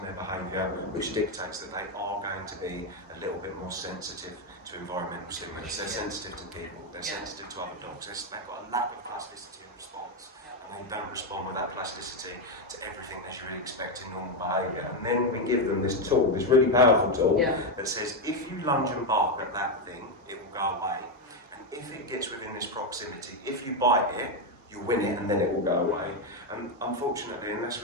their behaviour, which dictates that they are going to be a little bit more sensitive to environmental stimulus. They're sensitive to people, they're sensitive to other dogs, they've got a lack of plasticity in response, and they don't respond with that plasticity to everything as you would expect in normal behaviour. And then we give them this tool, this really powerful tool, that says if you lunge and bark at that thing, it will go away, and if it gets within this proximity, if you bite it, you'll win it and then it will go away. And unfortunately, unless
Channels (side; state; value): both; normal; correlation 0.06